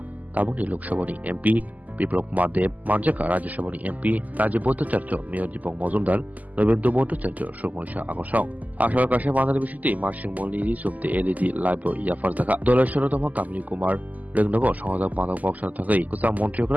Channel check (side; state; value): left; late; 0.079 ms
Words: Tabuni Lukshabani MP Biplok Madev Manjaka Rajashabani MP Rajiboto Charcho Mayor Dipong Mozumdar November Moto Charcho Shomonisha Agosong Ashar Kasha Mandar Bishiti Marshing Molini Subte LED Libo Yafarzaka Dollar Sharotama Kamini Kumar Regnogo Songa Pando Boxer Takai Kusa